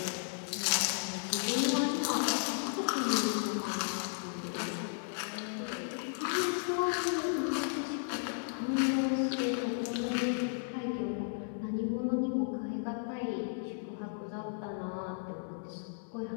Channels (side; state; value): right; silent; 55 dB below the other